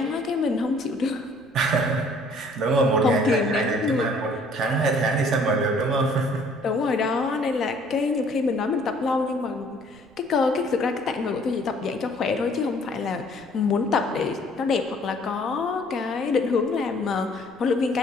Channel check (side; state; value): right; noise; rumble, 29 dB below the sound